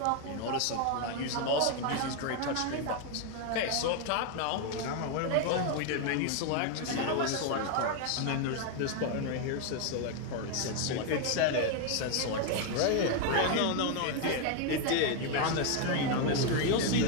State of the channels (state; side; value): different; both; correlation 0.01